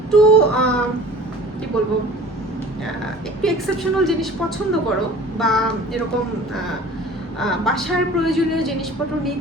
কি বলবো, একটু এক্সেপশনাল জিনিস পছন্দ করো বা এরকম বাসার প্রয়োজনীয় জিনিসপত্র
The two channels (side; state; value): both; normal; correlation 0.44